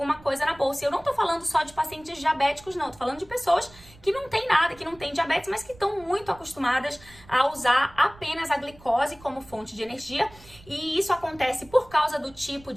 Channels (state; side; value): noise; right; rumble, 23 dB below the sound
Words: coisa na bolsa. E eu não tô falando só de pacientes diabéticos, não. Tô falando de pessoas que não tem nada, que não têm diabetes, mas que estão muito acostumadas a usar apenas a glicose como fonte de energia, e isso acontece por causa do tipo